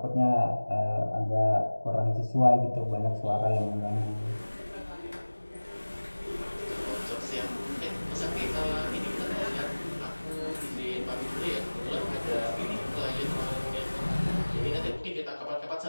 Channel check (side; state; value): both; inverted; correlation -1.00